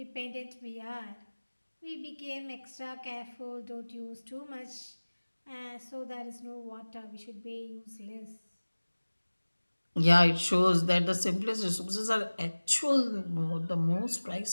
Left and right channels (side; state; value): both; inverted; correlation -1.00